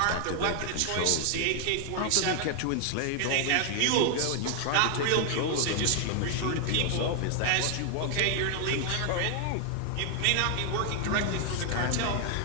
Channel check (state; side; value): different; both; correlation 0.00